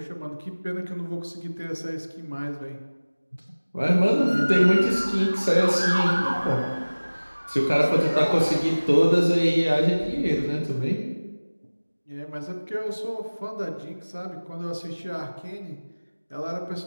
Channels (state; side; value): inverted; both; correlation -1.00